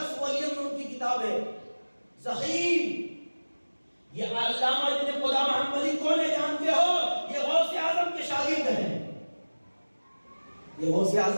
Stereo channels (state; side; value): inverted; both; correlation -1.00